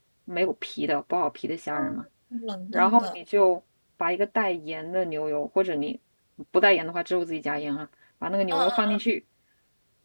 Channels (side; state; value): both; inverted; correlation -1.00